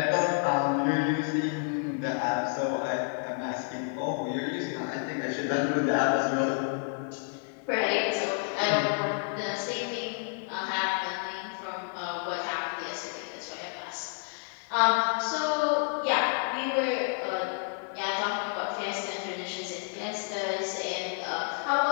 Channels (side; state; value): right; silent; 55 dB below the other